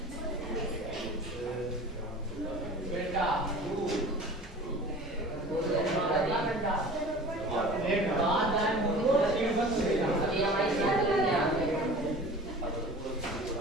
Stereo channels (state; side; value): normal; both; correlation 0.41